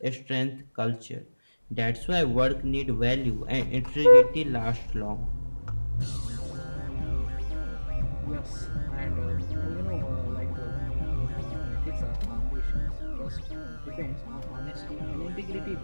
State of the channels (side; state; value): both; inverted; correlation -1.00